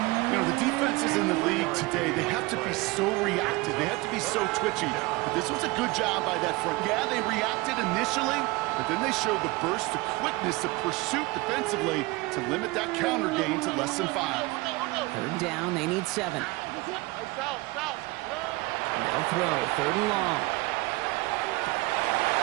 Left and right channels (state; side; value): quieter; left; 22.8 dB